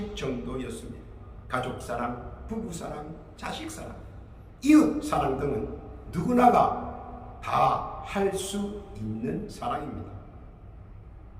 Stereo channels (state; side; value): identical; both; correlation 1.00